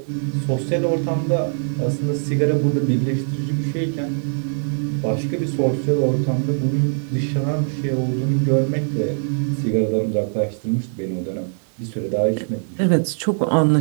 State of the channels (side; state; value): left; silent; digital silence